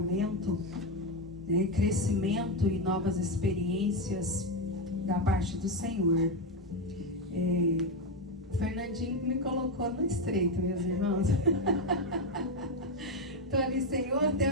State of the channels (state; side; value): normal; both; correlation 0.08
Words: né, crescimento e novas experiências da parte do Senhor. O Fernandinho me colocou no estreito, meus irmãos. Estou ali, Senhor,